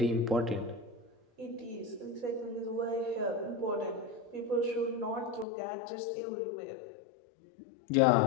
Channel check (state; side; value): drops out; right; at 5.5 s